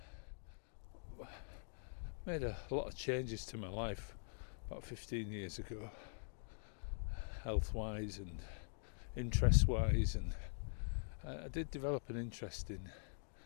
made a lot of changes to my life about 15 years ago, health-wise and interest-wise, and I did develop an interest in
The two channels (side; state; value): right; silent; digital silence